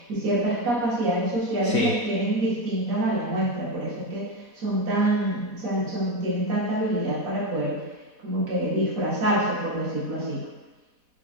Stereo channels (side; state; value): left; late; 4.1 ms